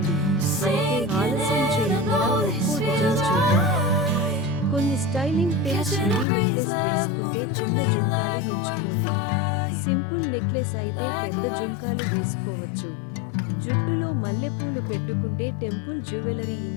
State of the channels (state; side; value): drops out; right; at 6.2 s